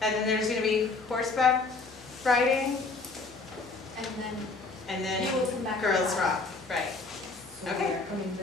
and then there's going to be horseback riding, And then and then you will come back. girls rock, right? So Okay. we are coming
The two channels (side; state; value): right; quieter; 3.8 dB